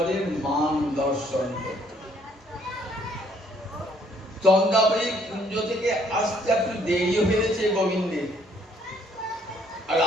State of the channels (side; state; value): both; normal; correlation 0.65